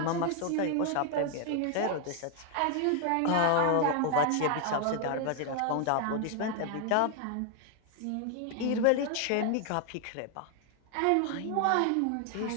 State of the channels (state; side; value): different; both; correlation 0.00